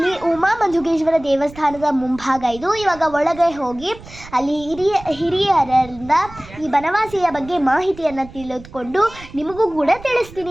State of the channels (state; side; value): noise; right; rumble, 18 dB below the sound